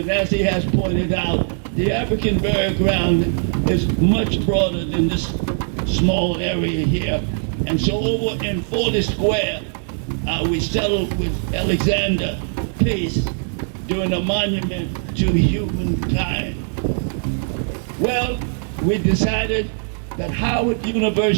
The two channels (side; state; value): left; silent; 65 dB below the other